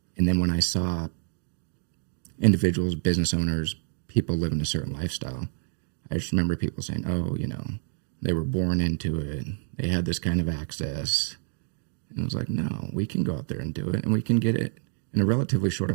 And then when I saw individuals, business owners, people living a certain lifestyle, I just remember people saying, oh, you know, they were born into it. They had this kind of access. And I was like, no, we can go out there and do it, and we can get it in a relatively short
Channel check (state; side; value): silent; left; digital silence